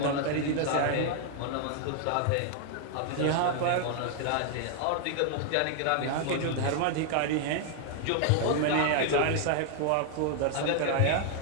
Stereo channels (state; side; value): different; both; correlation 0.00